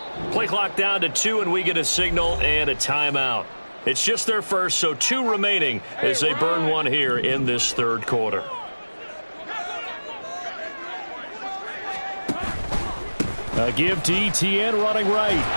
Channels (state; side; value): inverted; both; correlation -1.00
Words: Play clock down to 2, and we get a signal and a timeout. It's just their first, so 2 remaining as they burn one here in this third quarter. A give to Etienne running right.